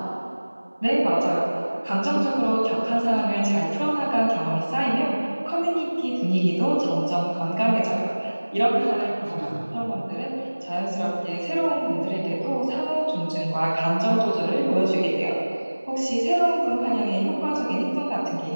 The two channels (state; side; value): inverted; both; correlation -1.00